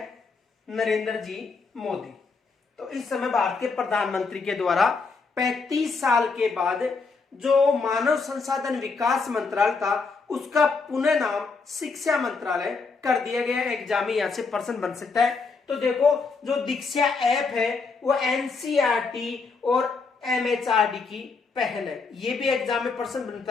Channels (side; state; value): right; quieter; 4.5 dB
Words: नरेंद्र जी मोदी। तो इस समय भारत के प्रधानमंत्री के द्वारा 35 साल के बाद जो मानव संसाधन विकास मंत्रालय था उसका पुनः नाम शिक्षा मंत्रालय कर दिया गया। एग्जाम में यहां से प्रश्न बन सकता है। तो देखो जो दीक्षा ऐप है वो NCERT और MHRD की पहल है। ये भी एग्जाम में प्रश्न